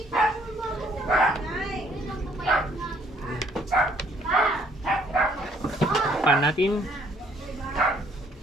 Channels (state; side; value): normal; both; correlation 0.64